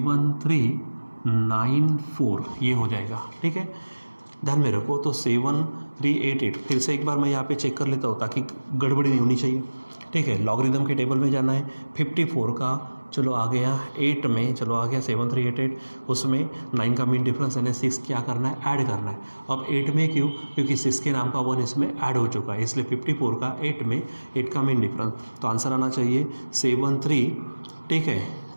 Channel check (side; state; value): both; inverted; correlation -1.00